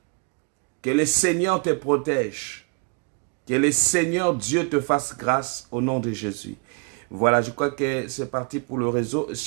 Que le Seigneur te protège. Que le Seigneur Dieu te fasse grâce au nom de Jésus. Voilà, je crois que c'est parti pour le réseau.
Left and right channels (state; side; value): quieter; left; 35.7 dB